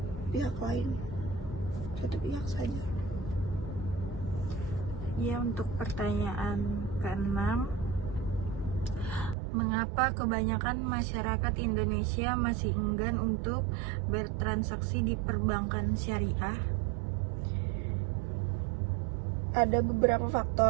pihak saja. Ya, untuk pertanyaan keenam, mengapa kebanyakan masyarakat Indonesia masih enggan untuk bertransaksi di perbankan syariah? Ada beberapa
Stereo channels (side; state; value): left; drops out; at 9.3 s